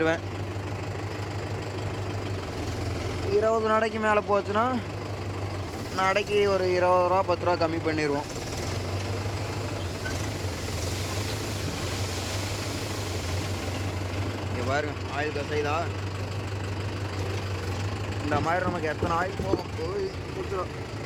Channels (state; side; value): identical; both; correlation 1.00